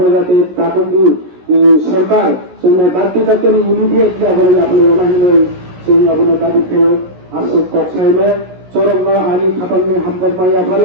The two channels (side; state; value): left; late; 17 ms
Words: যাতে তাপন্দি সরকার সঙ্গে দায়িত্ব দায়িত্ব ইমিডিয়েটলি আপনার রোনাহিলয় সঙ্গে আপনার দাবিত্ব আসুক কক্সাইলে চরমনা আনি খাতামনি হামদার মাইয়া